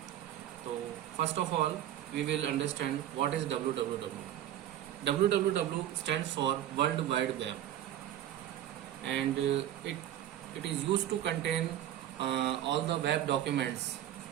So first of all we will understand what is www. www stands for World Wide Web, and it is used to contain all the web documents,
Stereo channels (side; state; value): left; quieter; 11.9 dB